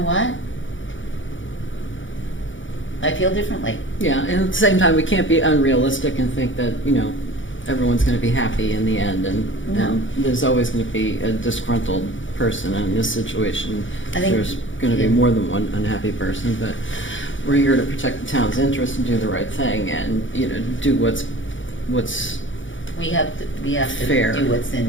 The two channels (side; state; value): right; late; 0.56 ms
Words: what? I feel differently. Yeah, and at the same time, we can't be unrealistic and think that, everyone's going to be happy in the end, and there's always going to be a disgruntled person in this situation. I think there's going to be more than one unhappy person, but we're here to protect the town's interests and do the right thing, and do what's we have to fair. do what's in